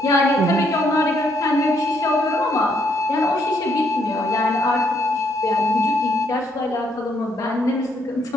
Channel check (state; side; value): normal; both; correlation 0.72